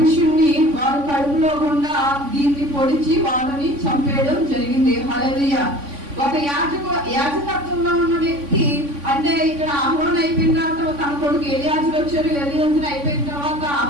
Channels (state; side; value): late; left; 3.5 ms